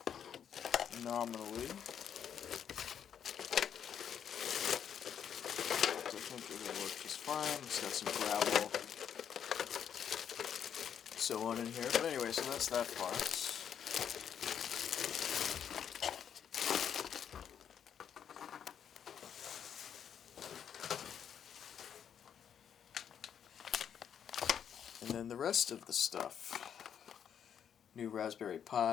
nominally. I think it will work just fine. It's got some gravel, so on in here. But anyway, so that's that part. And then the rest of the stuff. New Raspberry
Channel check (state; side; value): quieter; right; 8.5 dB